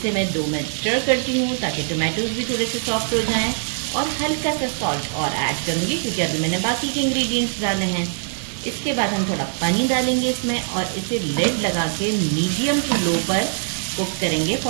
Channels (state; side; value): silent; left; digital silence